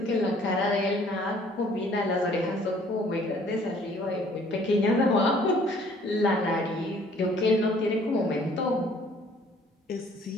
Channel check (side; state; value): both; normal; correlation 0.57